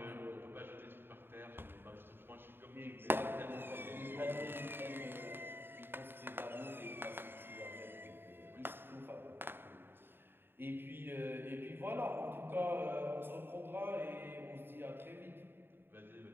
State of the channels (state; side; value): late; left; 0.10 ms